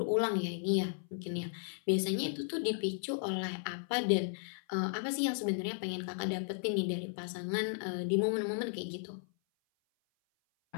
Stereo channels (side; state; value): right; silent; 54 dB below the other